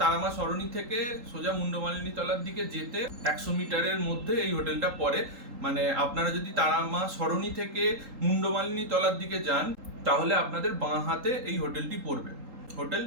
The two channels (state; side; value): late; left; 3.8 ms